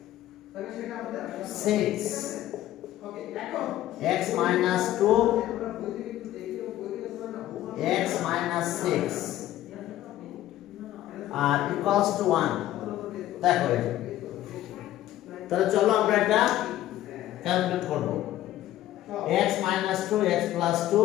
6 x minus 2 x minus 6 R equals to 1 দেখো। তাহলে চলো আমরা এটা ক্যালকুলেট করব। x minus 2 x plus 2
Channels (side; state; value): right; quieter; 13.8 dB